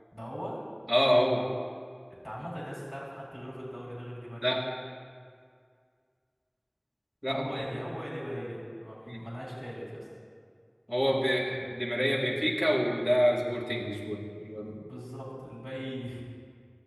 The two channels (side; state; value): both; identical; correlation 1.00